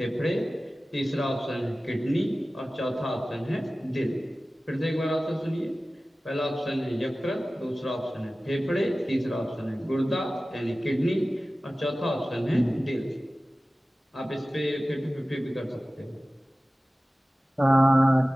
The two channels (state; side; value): normal; both; correlation 0.96